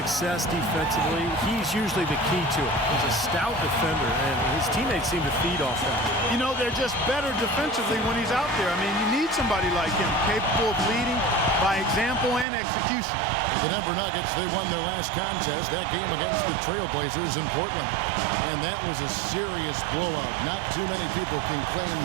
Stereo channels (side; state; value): left; drops out; at 12.5 s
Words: defensively, he's usually the key to it. He's a stout defender, and his teammates seem to feed off that. You know, they're just better defensively when he's out there. I mean, you need somebody like him, capable of leading by example and execution. The Denver Nuggets, they won their last contest, that game against the Trailblazers in Portland. And that was a serious blowout. Not too many people can claim